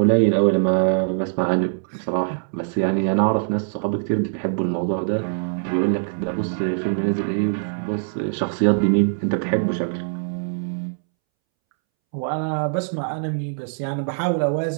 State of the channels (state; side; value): silent; left; 64 dB below the other